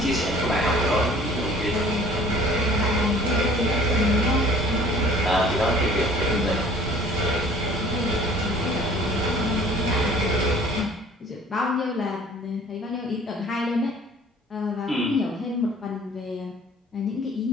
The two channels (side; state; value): both; normal; correlation 0.51